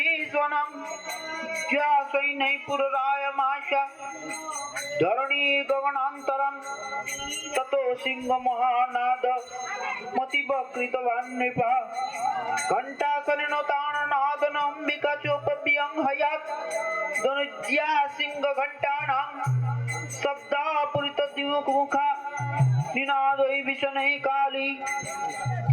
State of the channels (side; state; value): both; identical; correlation 1.00